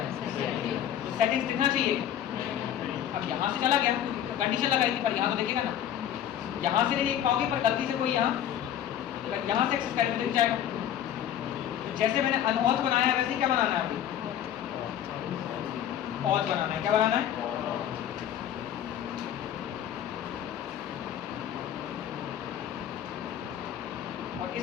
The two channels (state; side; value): quieter; right; 10.5 dB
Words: है, तो सेटिंग्स दिखना चाहिए। अब यहाँ से चला गया तो कंडीशन लगाई थी, पर यहाँ तो देखेगा ना, यहाँ से नहीं देख पाओगे, पर गलती से कोई यहाँ से एक्सेस करे तो दिख जाएगा। तो जैसे मैंने अनऑथ बनाया है वैसे ही क्या बनाना है, अभी ऑथ बनाना है, क्या बनाना है, और